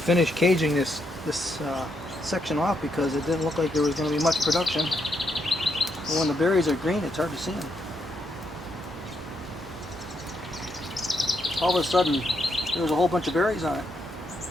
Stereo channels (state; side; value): normal; both; correlation 0.79